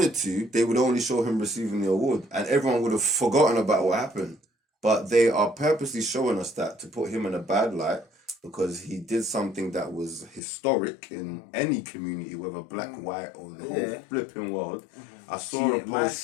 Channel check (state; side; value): drops out; right; at 10.4 s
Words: to, they would only show him receiving the award, and everyone would have forgotten about what happened. But they are purposely showing us that to put him in a bad light because he did something that was historic in any community, whether black, white, or the whole flipping world. I saw a Man